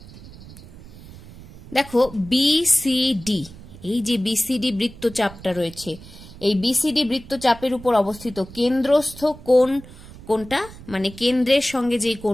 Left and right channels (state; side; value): noise; right; rumble, 18 dB below the sound